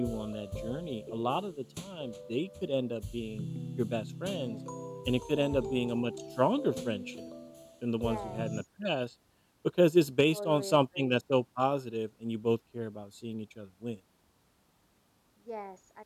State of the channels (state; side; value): identical; both; correlation 1.00